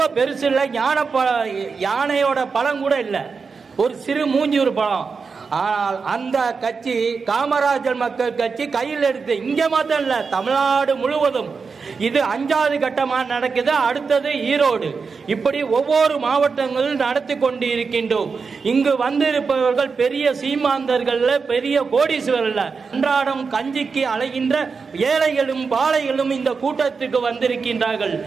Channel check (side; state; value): left; quieter; 5.1 dB